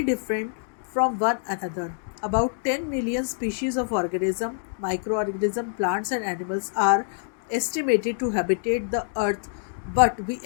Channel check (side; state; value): right; silent; digital silence